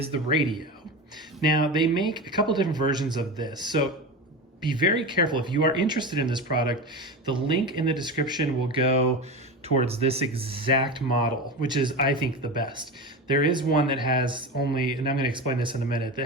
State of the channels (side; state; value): both; normal; correlation 0.24